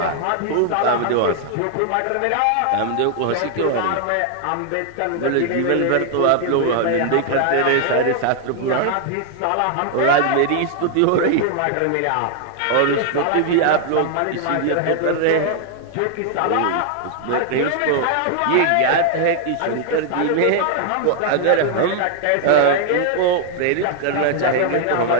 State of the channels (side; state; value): both; different; correlation 0.00